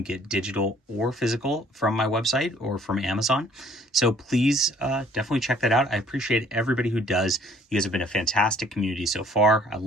get digital or physical from my website or from Amazon. So please definitely check that out. I appreciate everybody who does. You guys have been a fantastic community so far. I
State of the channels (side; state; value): both; normal; correlation 0.58